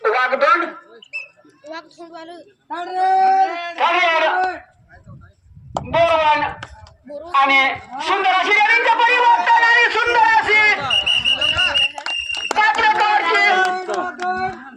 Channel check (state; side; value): identical; both; correlation 1.00